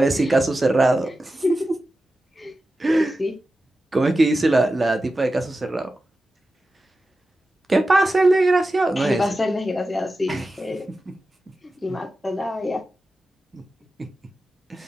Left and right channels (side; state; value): both; normal; correlation 0.93